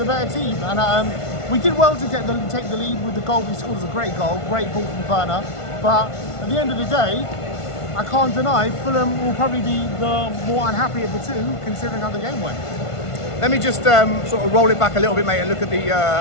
better team. And we did well to take the lead with the goal. We scored a great goal, great ball from Werner. But at the end of the day, I can't deny Fulham will probably be the more unhappy of the two, considering how the game went. Let me just sort of roll it back a little bit, mate, and look at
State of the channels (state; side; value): late; right; 1.5 ms